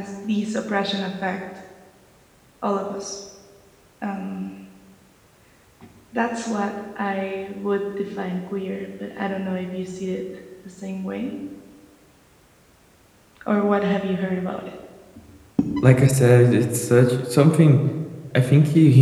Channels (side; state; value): both; identical; correlation 1.00